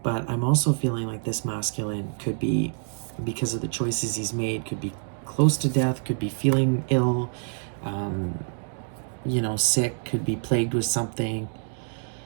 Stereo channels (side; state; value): left; silent; 60 dB below the other